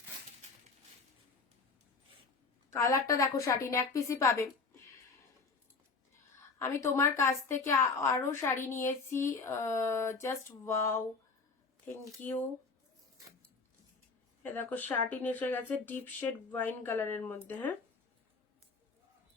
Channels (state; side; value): quieter; right; 4.4 dB